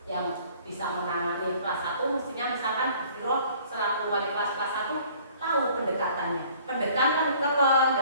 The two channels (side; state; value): both; inverted; correlation -0.54